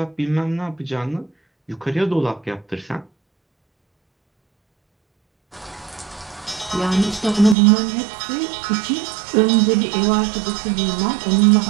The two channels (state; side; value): drops out; left; at 7.6 s